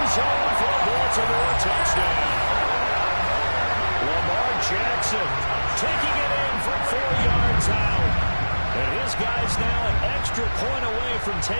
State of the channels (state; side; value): inverted; both; correlation -1.00